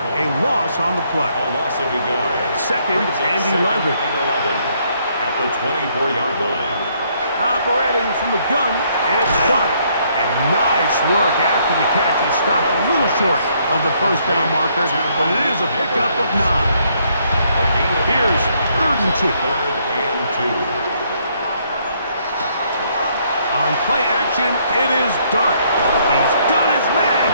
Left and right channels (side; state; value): both; inverted; correlation -0.69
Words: A loss on the play. A loss of a yard. 2nd and 11. At the 24-yard line. Operating from the gun, it's Dart. And nice work after the catch. He stopped a little short of the 1st down marker, but it is a pickup of 9. Here's 3rd and 2. 3rd and 2. On play action, it is Dart. He's got his man